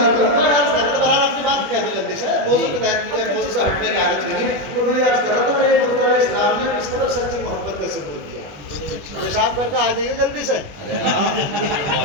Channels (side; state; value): left; late; 20 ms